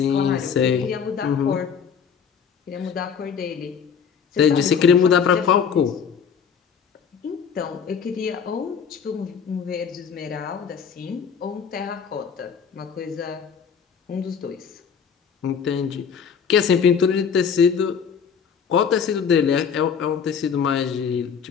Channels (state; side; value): quieter; right; 6.9 dB